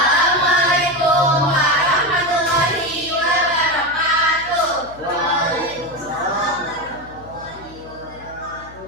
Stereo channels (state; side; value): noise; left; hum, 20 dB below the sound